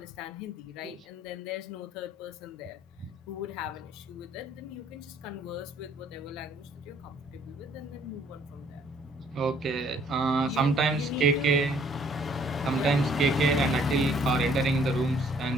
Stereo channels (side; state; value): both; normal; correlation 0.61